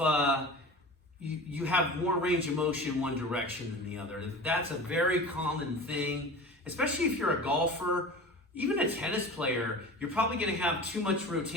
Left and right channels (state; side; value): normal; both; correlation 0.35